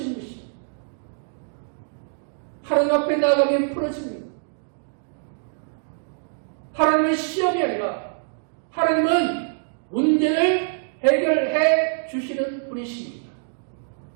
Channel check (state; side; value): silent; left; digital silence